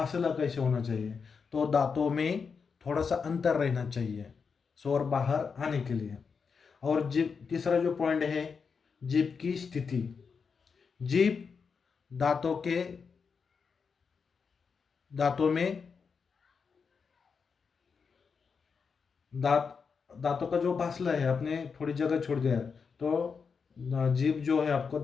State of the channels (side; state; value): right; quieter; 5.6 dB